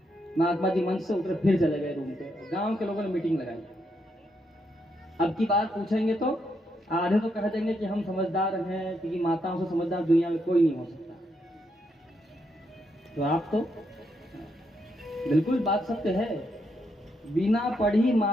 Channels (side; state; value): both; normal; correlation 0.79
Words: महात्मा जी मंच से उतरे, फिर चले गए रूम पे। गांव के लोगों ने मीटिंग लगाई। अब की बात पूछेंगे तो आधे तो कह देंगे कि हम समझदार हैं, क्योंकि माताओं से समझदार दुनिया में कोई नहीं हो सकता। तो आप तो बिल्कुल बात सत्य है। बिना पढ़ी